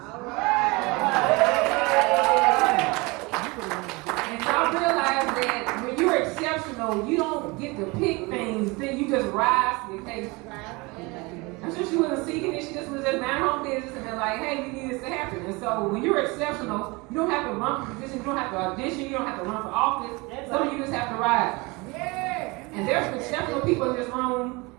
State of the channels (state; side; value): quieter; left; 25.6 dB